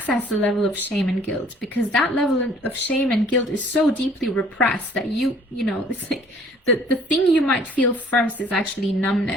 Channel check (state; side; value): normal; both; correlation 0.56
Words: the level of shame and guilt, because that level of shame and guilt is so deeply repressed that it's like the thing you might feel first is actually